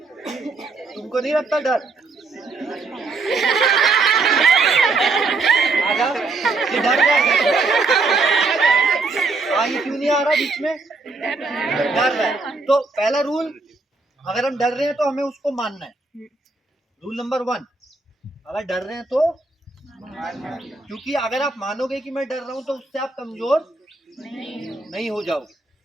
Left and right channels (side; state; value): left; quieter; 3.8 dB